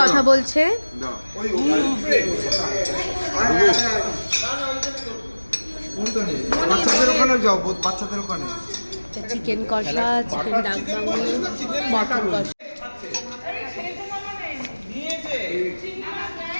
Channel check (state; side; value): inverted; both; correlation -1.00